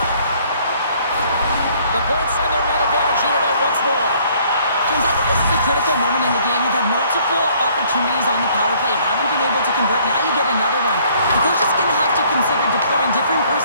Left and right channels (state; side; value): inverted; both; correlation -0.61